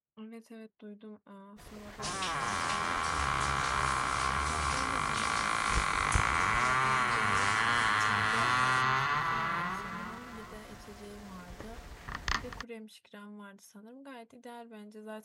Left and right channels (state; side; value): identical; both; correlation 1.00